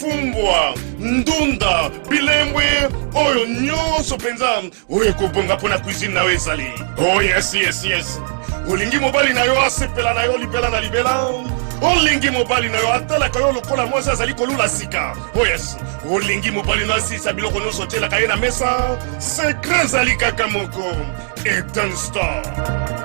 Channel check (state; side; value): silent; left; digital silence